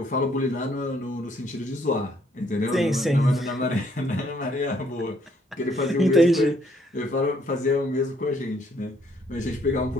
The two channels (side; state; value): both; normal; correlation 0.67